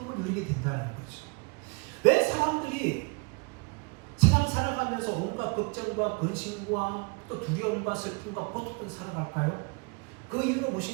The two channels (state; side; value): quieter; left; 30.6 dB